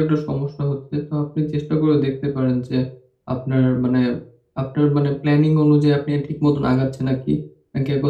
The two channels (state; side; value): identical; both; correlation 1.00